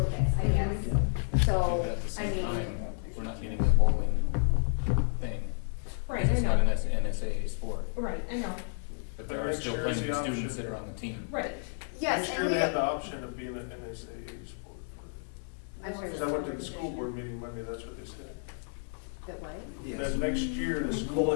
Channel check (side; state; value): right; silent; digital silence